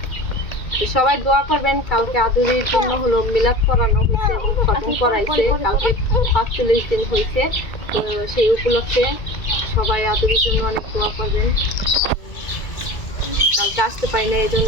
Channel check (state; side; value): late; right; 2.2 ms